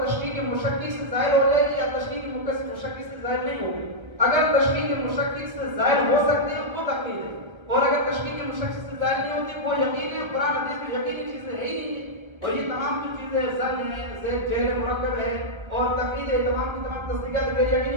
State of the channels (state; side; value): late; left; 1.2 ms